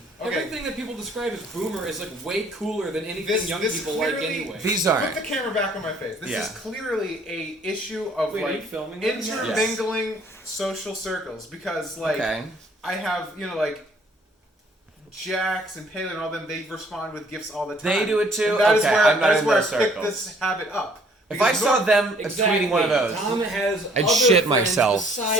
Everything that people describe as boomer is like way cooler than anything young people like anyway. These are. Put the camera back on my face. This is clearly a issue of are you filming intermingling social circles, because I have Jax and Palin and all them. They respond with gifts all the time. They do it too. And that is where I circles. picked this habit up. If I saw them tweeting one of those, Tom has I'd shit myself.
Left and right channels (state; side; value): normal; both; correlation 0.60